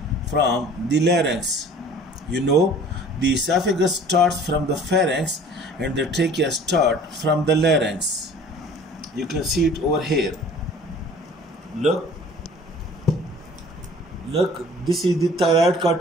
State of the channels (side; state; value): both; normal; correlation 0.48